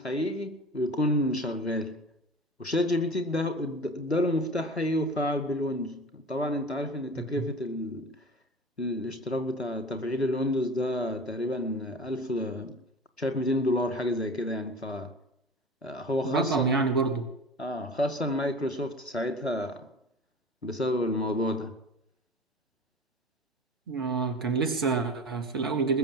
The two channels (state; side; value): normal; both; correlation 0.36